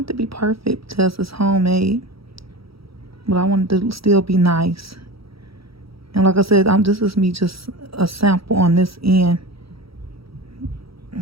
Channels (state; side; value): late; left; 0.75 ms